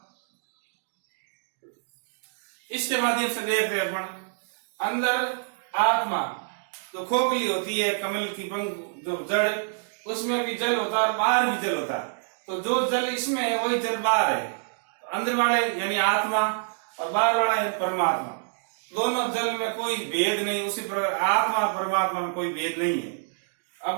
इसके माध्यम से देखते हैं अपन, अंदर आत्मा तो खोखली होती है, कमल की पंख जो जड़, उसमें भी जल होता है और बाहर भी जल होता है। तो जो जल इसमें है वही जल बाहर है। तो अंदर वाले यानी आत्मा और बाहर वाला है परमात्मा। दोनों जल में कोई भेद नहीं, उसी प्रकार आत्मा और परमात्मा में कोई भेद नहीं है।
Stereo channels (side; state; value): left; silent; digital silence